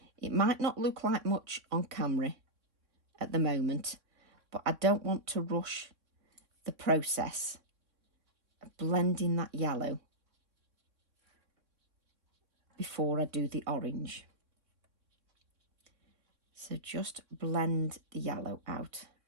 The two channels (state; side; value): late; left; 3.6 ms